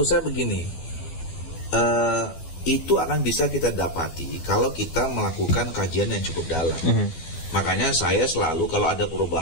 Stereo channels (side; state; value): right; late; 13 ms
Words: saya begini, itu akan bisa kita dapati kalau kita melakukan kajian yang cukup dalam. Makanya saya selalu kalau ada